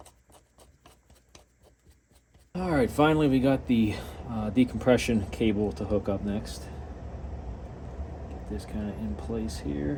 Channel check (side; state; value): both; identical; correlation 1.00